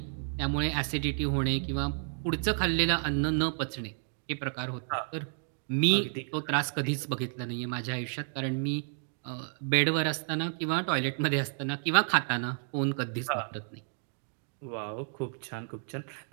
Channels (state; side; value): silent; left; 57 dB below the other